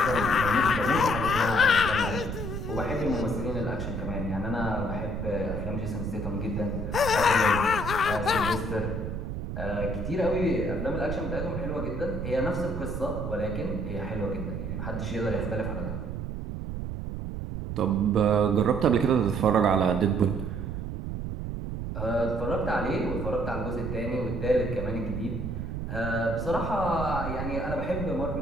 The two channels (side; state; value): right; noise; rumble, 5 dB below the sound